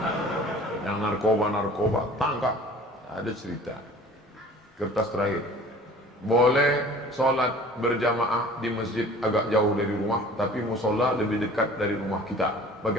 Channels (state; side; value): normal; both; correlation 0.46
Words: Yang narkoba, tangkap. Ada cerita. Kertas terakhir. Boleh sholat berjamaah di masjid agak jauh dari rumah, tapi musola lebih dekat dari rumah kita.